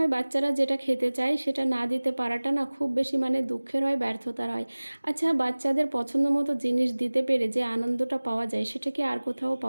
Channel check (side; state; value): both; inverted; correlation -1.00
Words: বাচ্চারা যেটা খেতে চায় সেটা না দিতে পারাটা না খুব বেশি দুঃখের হয়, ব্যর্থতার হয়। আচ্ছা, বাচ্চাদের পছন্দ মতো জিনিস দিতে পেরে যে আনন্দটা পাওয়া যায়, সেটা কি আর কোথাও